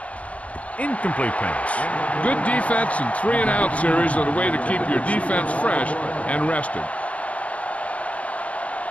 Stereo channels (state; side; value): late; right; 0.066 ms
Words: Incomplete pass. Good defense and 3-and-out series are the way to keep your defense fresh and rested.